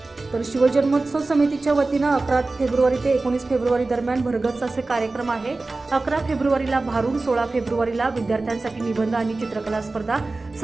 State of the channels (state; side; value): quieter; left; 3.4 dB